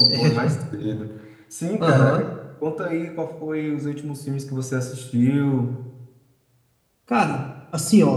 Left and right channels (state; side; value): identical; both; correlation 1.00